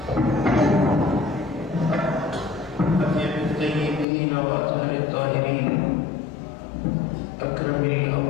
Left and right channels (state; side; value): drops out; right; at 4.0 s